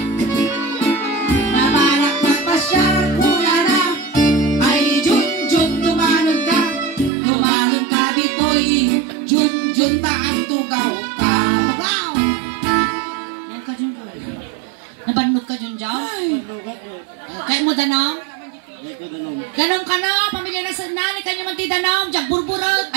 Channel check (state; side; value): drops out; left; at 7.1 s